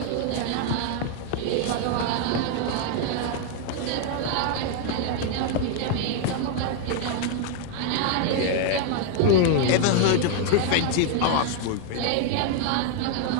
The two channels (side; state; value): both; different; correlation 0.00